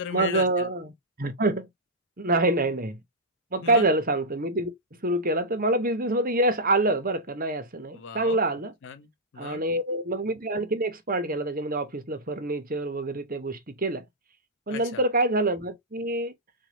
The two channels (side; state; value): both; normal; correlation -0.10